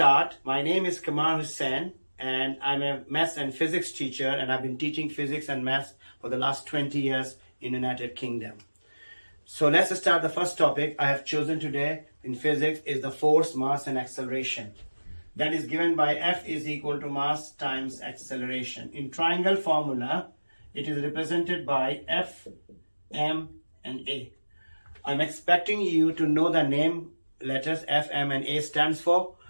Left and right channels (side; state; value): both; inverted; correlation -1.00